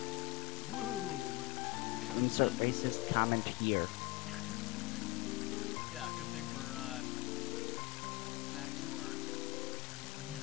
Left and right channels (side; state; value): right; quieter; 19.4 dB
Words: Woo! Because That's that's... a racist comment here. Yeah, good thing we're, back to our